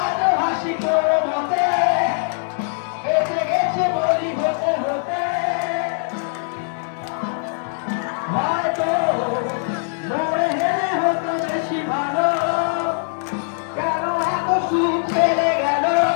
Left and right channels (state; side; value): silent; right; digital silence